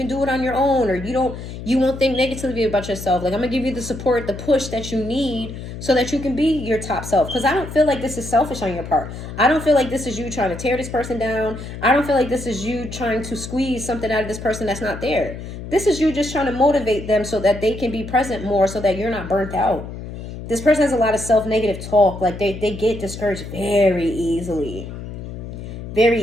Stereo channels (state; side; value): noise; left; hum, 10 dB below the sound